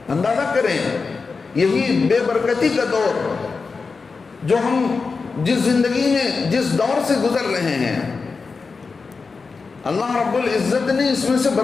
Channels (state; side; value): quieter; right; 4.6 dB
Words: اندازہ کریں یہی بے برکتی کا دور جو ہم جس زندگی میں جس دور سے گزر رہے ہیں، اللہ رب العزت نے اس میں سے